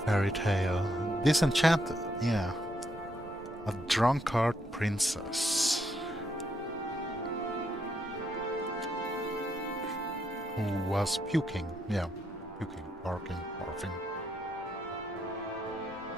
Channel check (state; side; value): normal; both; correlation 0.77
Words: fairy tale. Disenchanted, yeah. A drunkard princess. Who was puking, yeah. Puking, barking, barfing.